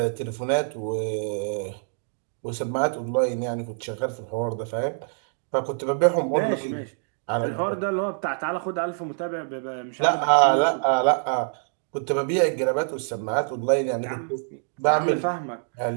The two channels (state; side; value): silent; left; 61 dB below the other